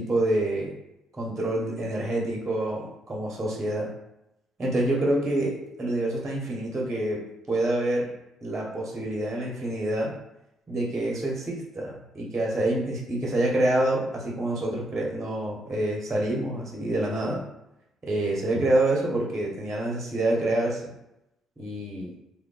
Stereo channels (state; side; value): normal; both; correlation 0.78